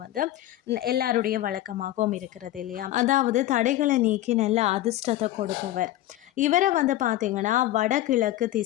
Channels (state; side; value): quieter; right; 14.5 dB